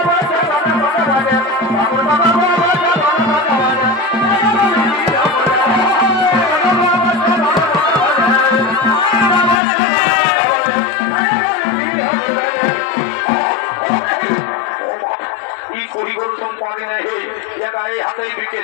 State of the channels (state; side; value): drops out; right; at 9.6 s